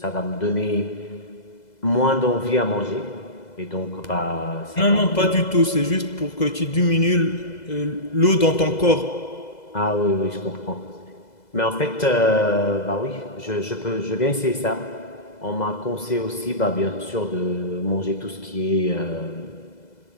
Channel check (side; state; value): right; late; 2.0 ms